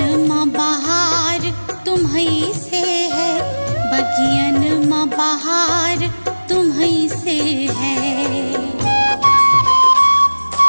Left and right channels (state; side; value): inverted; both; correlation -1.00